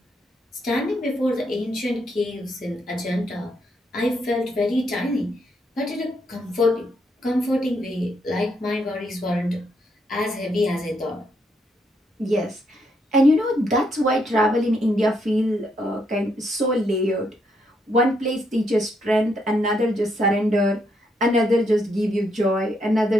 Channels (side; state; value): both; normal; correlation 0.76